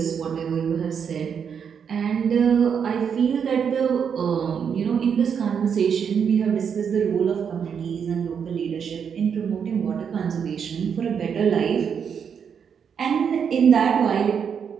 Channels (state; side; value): quieter; left; 7.2 dB